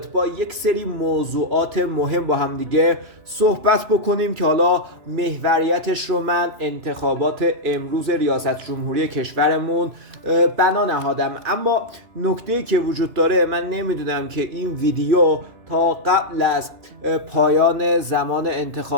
با یک سری موضوعات مهم با هم دیگه صحبت بکنیم که حالا محوریتش رو من انتخابات امروز ریاست جمهوری کشورمون بنا نهادم. اما نکته‌ای که وجود داره، من نمیدونم که این ویدیو تا قبل از پایان زمان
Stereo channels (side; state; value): left; late; 3.0 ms